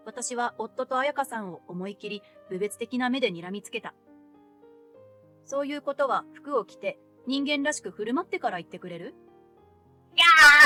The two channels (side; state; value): both; identical; correlation 1.00